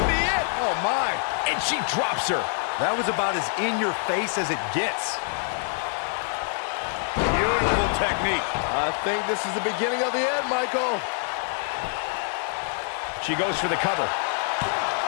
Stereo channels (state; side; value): silent; right; 61 dB below the other